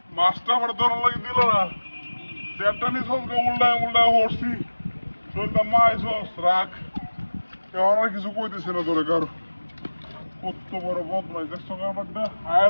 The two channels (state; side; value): inverted; both; correlation -1.00